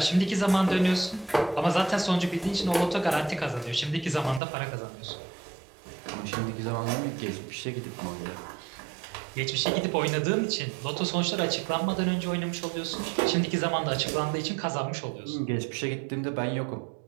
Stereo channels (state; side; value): drops out; left; at 4.4 s